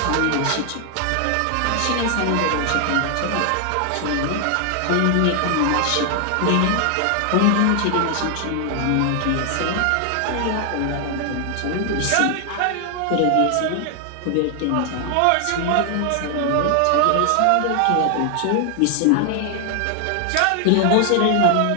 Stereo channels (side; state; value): both; different; correlation 0.00